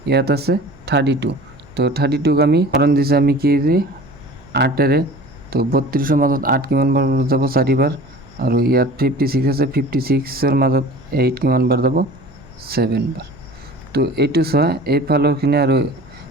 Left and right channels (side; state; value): right; noise; hum, 28 dB below the sound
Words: ইয়াত আছে 32। তো 32ক আমি হৰণ দিছে আমি কি দি 8ৰে। তো 32ৰ মাজত 8 কিমান বাৰ যাব? 4 বাৰ। আৰু ইয়াত 56 আছে, 56ৰ মাজত 8 কিমান বাৰ যাব? 7 বাৰ। তো এইটো চোৱা, এইফালৰখিনি আৰু